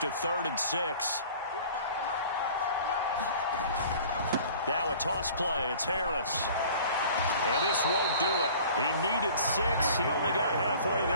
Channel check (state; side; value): inverted; both; correlation -0.47